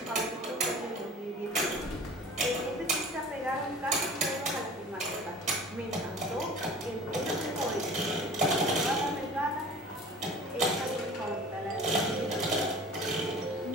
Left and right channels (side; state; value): both; normal; correlation 0.42